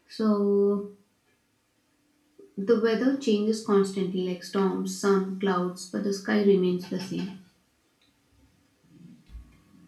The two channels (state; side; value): identical; both; correlation 1.00